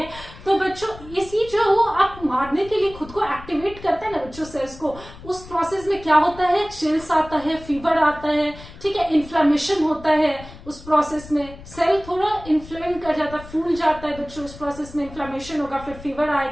तो बच्चों इसी जो वो आप मारने के लिए खुद को एक्टिवेट करता है ना बच्चों सेल्स को, उस प्रोसेस में क्या होता है, चिल्स आता है, फीवर आता है, ठीक है, इन्फ्लेमेशन होता है, उस प्रोसेस में सेल थोड़ा इन्फ्लेम कर जाता है, फूल जाता है बच्चों, उस प्रोसेस में इन्फ्लेमेशन होगा, फिर फीवर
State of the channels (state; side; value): noise; left; rumble, 17 dB below the sound